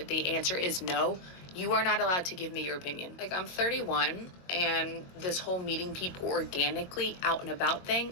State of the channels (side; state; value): right; late; 22 ms